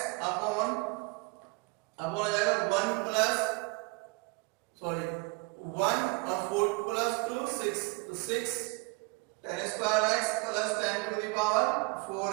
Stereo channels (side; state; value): left; quieter; 28.1 dB